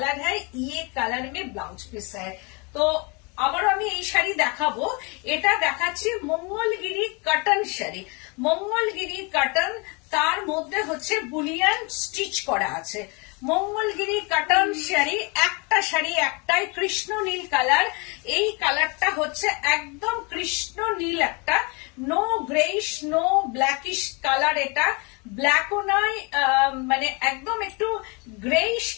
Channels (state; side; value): quieter; right; 30.4 dB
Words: है, ये कलर में ब्लाउज पीस है। তো আবারও আমি এই শাড়ি দেখাবো, এটা দেখাচ্ছি মঙ্গলগিরি কটন শাড়ি। মঙ্গলগিরি কটন, তার মধ্যে হচ্ছে বুলিয়ান স্টিচ করা আছে। মঙ্গলগিরি কটন শাড়ি, একটা শাড়ি একটাই কৃষ্ণ নীল কালার। এই কালারটা হচ্ছে একদম কৃষ্ণ নীল, একটা no greyish no blackish colour. এটা ব্ল্যাকও নয়, মানে একদম একটু গ্রেইশ